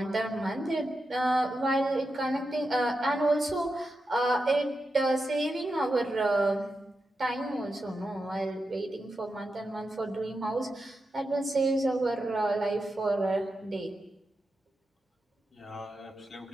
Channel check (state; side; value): normal; both; correlation 0.89